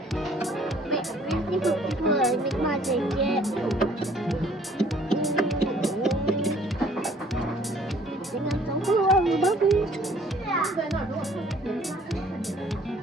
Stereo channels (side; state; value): both; normal; correlation 0.57